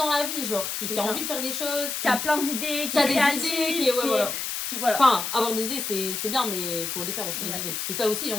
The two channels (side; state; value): left; noise; hiss, 3 dB below the sound